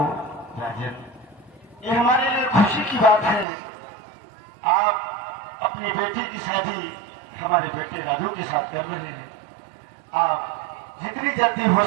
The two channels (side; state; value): left; drops out; at 3.5 s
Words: राजन, ये हमारे लिए खुशी की बात है। आप अपनी बेटी की शादी हमारे बेटे राजू के साथ कर रहे हैं। आप जितनी जल्दी हो